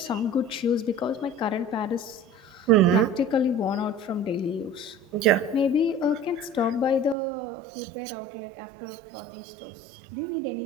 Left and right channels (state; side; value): drops out; left; at 7.2 s